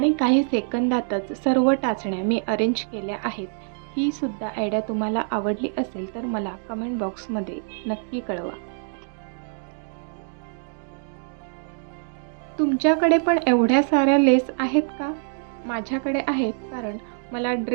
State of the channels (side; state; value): left; silent; 62 dB below the other